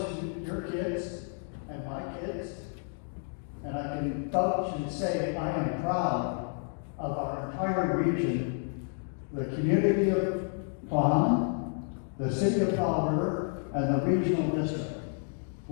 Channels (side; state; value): right; silent; 57 dB below the other